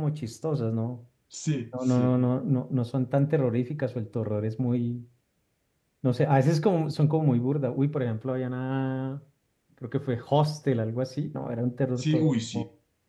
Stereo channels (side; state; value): both; identical; correlation 1.00